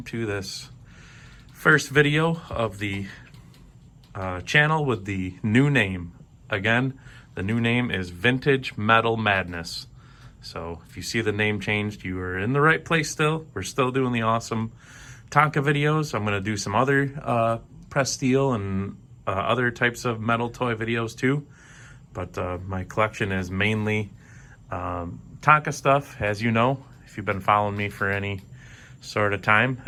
this first video of the channel with the new name. Again, the new name is Vintage Metal Madness. So if you see the name changed, you are in the right place still. We're still doing the awesome Tonka videos. I'm going to do some other press steel and other types of metal toy videos too. But my collection is mainly Tonka stuff. As you know, if you've been following me for any sort of time,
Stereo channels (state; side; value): identical; both; correlation 1.00